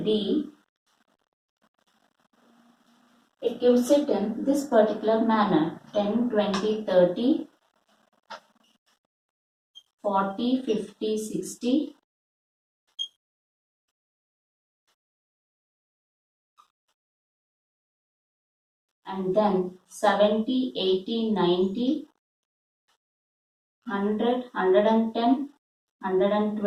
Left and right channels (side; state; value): both; identical; correlation 1.00